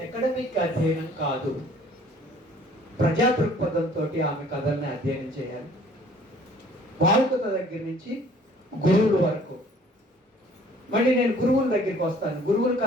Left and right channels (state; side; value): normal; both; correlation 0.55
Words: అకాడమిక్ అధ్యయనం కాదు, ప్రజా దృక్పథంతో ఆమె కథల్ని అధ్యయనం చేయాలి. బాలికత దగ్గర నుంచి గురువుల వరకు. మళ్ళీ నేను గురువుల దగ్గరికి వస్తాను. గురువుల